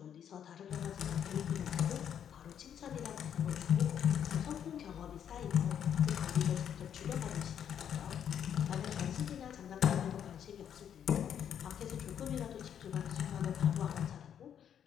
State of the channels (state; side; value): quieter; right; 9.0 dB